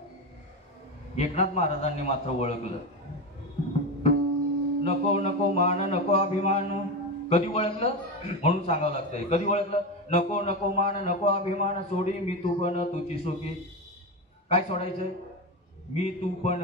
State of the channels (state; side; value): normal; both; correlation 0.18